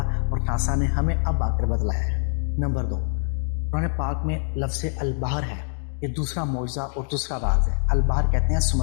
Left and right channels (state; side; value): silent; right; 62 dB below the other